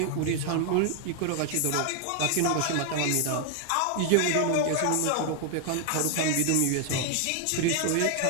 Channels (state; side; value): different; both; correlation 0.00